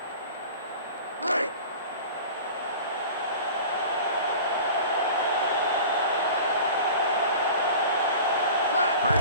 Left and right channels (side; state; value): both; inverted; correlation -0.40